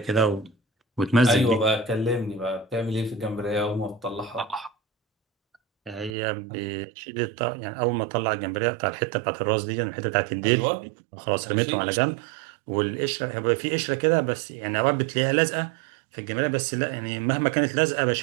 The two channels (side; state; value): left; drops out; at 6.1 s